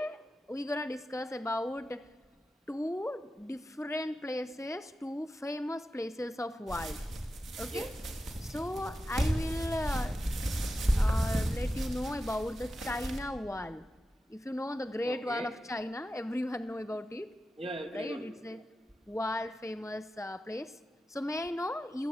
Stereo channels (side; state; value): both; normal; correlation 0.91